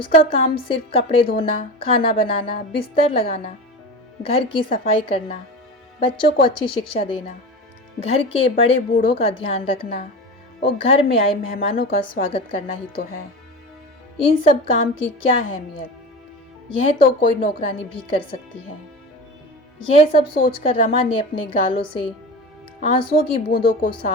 काम सिर्फ कपड़े धोना, खाना बनाना, बिस्तर लगाना, घर की सफाई करना, बच्चों को अच्छी शिक्षा देना, घर के बड़े बूढ़ों का ध्यान रखना और घर में आए मेहमानों का स्वागत करना ही तो है। इन सब काम की क्या अहमियत, यह तो कोई नौकरानी भी कर सकती है। यह सब सोचकर रमा ने अपने गालों से आंसुओं की बूंदों को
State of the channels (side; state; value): both; normal; correlation 0.29